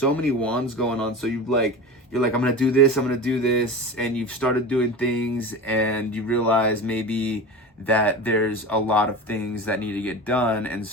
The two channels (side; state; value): both; normal; correlation 0.30